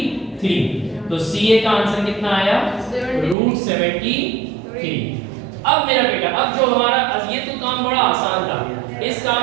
तो CA का आंसर कितना आया? √73। अब मेरा बेटा, अब जो हमारा ये तो काम बड़ा आसान था, इस काम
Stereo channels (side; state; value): left; drops out; at 3.4 s